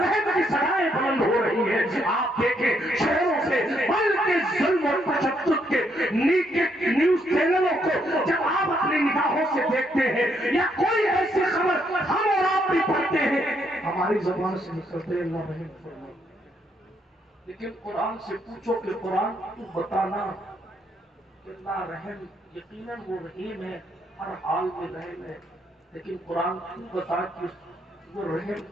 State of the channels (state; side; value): normal; both; correlation 0.74